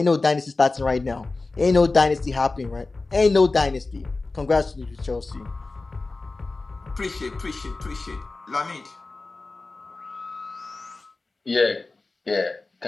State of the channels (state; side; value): quieter; right; 3.5 dB